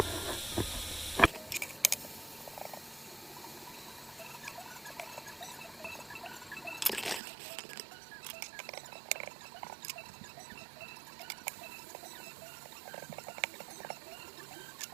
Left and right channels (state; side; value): drops out; left; at 7.2 s